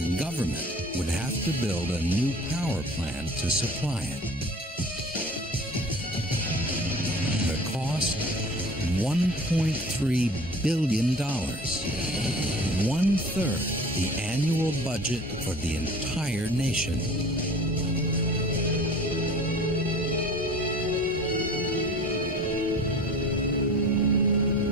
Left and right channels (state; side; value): normal; both; correlation 0.43